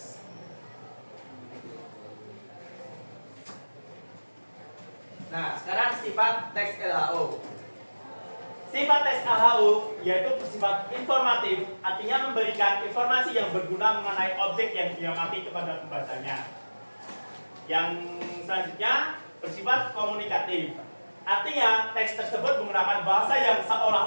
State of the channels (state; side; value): inverted; both; correlation -1.00